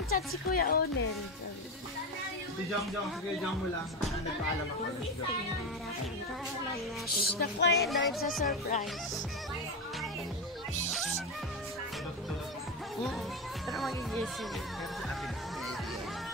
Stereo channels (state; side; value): normal; both; correlation 0.17